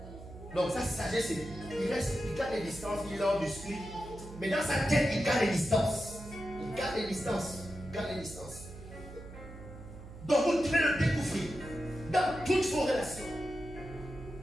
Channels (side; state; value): right; noise; hum, 14 dB below the sound